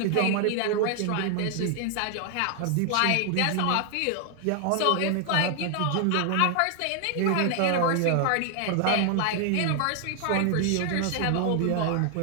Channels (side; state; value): both; different; correlation 0.00